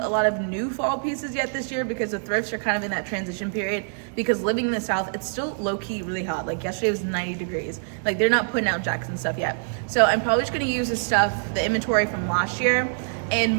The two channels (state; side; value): silent; left; digital silence